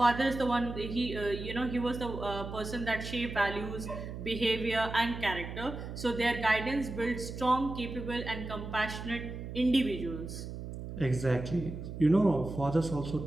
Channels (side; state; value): right; noise; hum, 8 dB below the sound